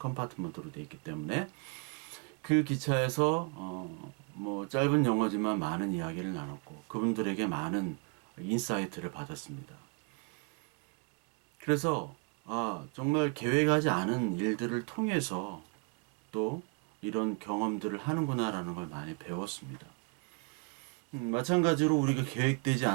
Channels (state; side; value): quieter; left; 34.2 dB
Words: 되어 있기 때문에 그 기차에서 뭐 짧은 영어지만 많은 이야기를 나눴고 그분들에게 많은 인사이트를 받았습니다. 그래서 정말 계획하지 않은 일들을 통해서 또 이런 경험들을 하는구나라는 걸 많이 배웠습니다. 마찬가지로 우리가 계획되지